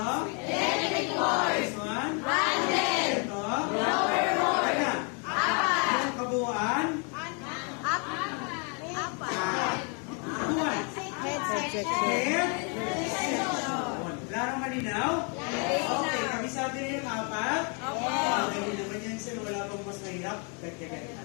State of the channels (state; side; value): quieter; right; 36.7 dB